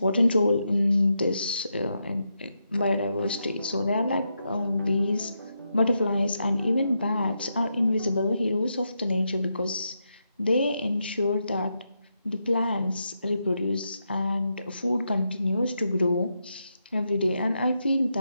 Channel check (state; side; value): inverted; both; correlation -0.84